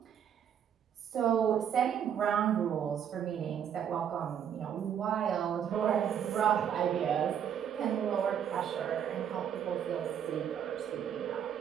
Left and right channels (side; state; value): left; quieter; 8.8 dB